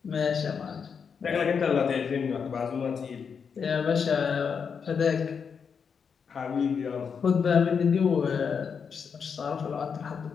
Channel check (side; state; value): right; quieter; 6.4 dB